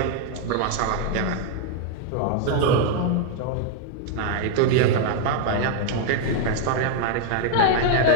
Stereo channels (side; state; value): both; different; correlation 0.00